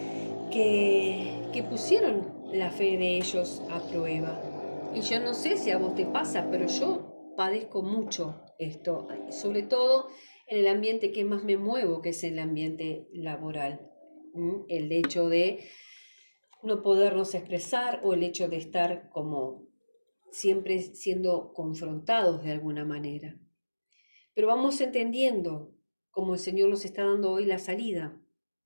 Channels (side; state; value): both; inverted; correlation -1.00